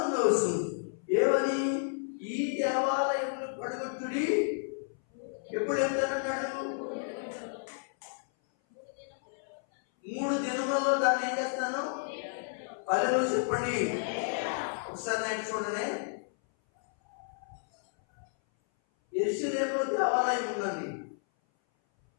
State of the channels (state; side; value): silent; right; 57 dB below the other